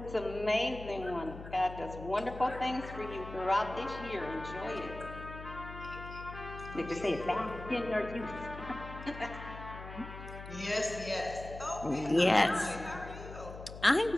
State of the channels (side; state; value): left; noise; hum, 12 dB below the sound